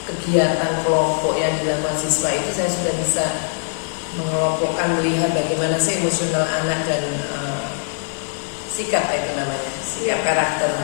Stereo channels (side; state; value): right; silent; digital silence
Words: kegiatan kelompok yang dilakukan siswa itu. Saya sudah bisa mengelompokkan, melihat bagaimana sih emosional anak dan sikap